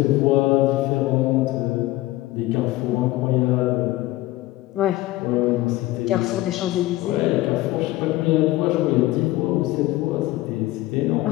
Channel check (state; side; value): quieter; right; 17.8 dB